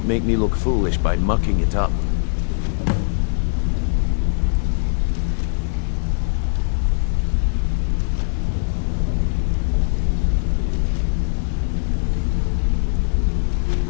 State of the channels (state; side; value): silent; right; digital silence